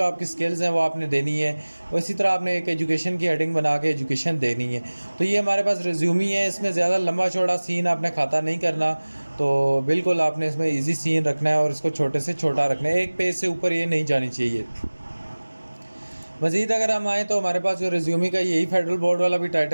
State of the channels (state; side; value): inverted; both; correlation -1.00